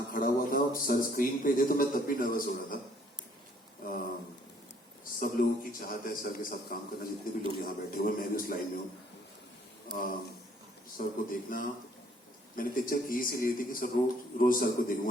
खड़ा हुआ था और सर स्क्रीन पे थे तो मैं तब भी नर्वस हो रहा था. सब लोगों की चाहत है सर के साथ काम करना, जितने भी लोग यहाँ बैठे हुए, मैं भी उस लाइन में हूँ. सर को देखना, मैंने पिक्चर की इसीलिए थी कि सर रोज सर को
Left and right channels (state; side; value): normal; both; correlation 0.62